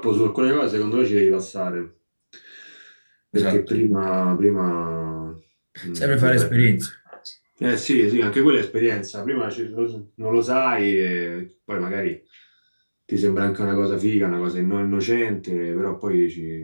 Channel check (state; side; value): inverted; both; correlation -1.00